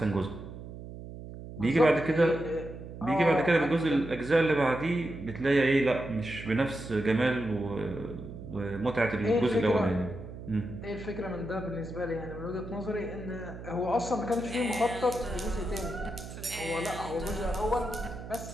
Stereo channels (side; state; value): right; noise; hum, 12 dB below the sound